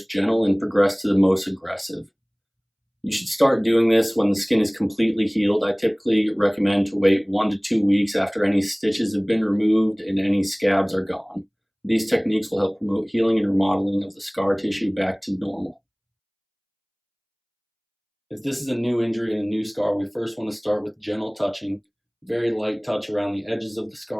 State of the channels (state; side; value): identical; both; correlation 1.00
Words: gentle and progress to the most aggressive. You should start doing this when the skin is completely healed. I typically recommend to wait 1 to 2 weeks after any stitches have been removed and any scabs are gone. These techniques will help promote healing and remodeling of the scar tissue back to normal. If this is a new injury and a new scar, we first want to start with gentle touching, very light touch around the edges of the